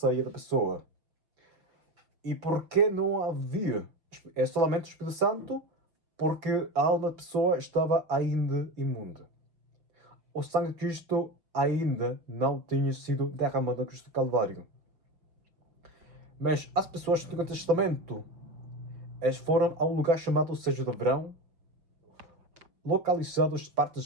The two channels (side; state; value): left; late; 5.7 ms